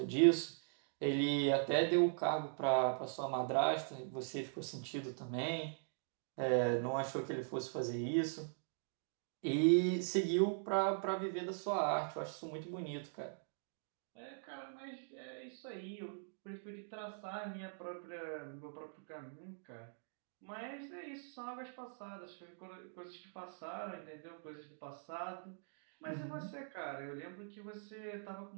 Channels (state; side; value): silent; left; digital silence